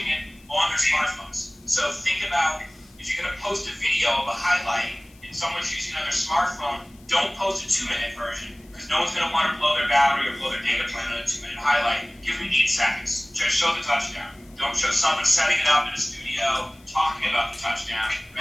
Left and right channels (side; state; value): left; noise; hiss, 28 dB below the sound